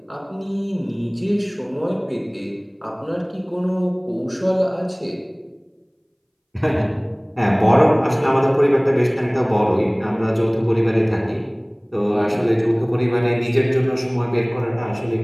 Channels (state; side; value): identical; both; correlation 1.00